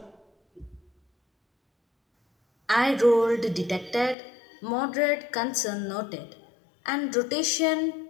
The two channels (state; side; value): drops out; right; at 4.2 s